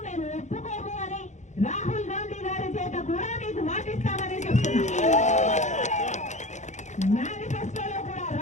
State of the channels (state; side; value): late; right; 0.34 ms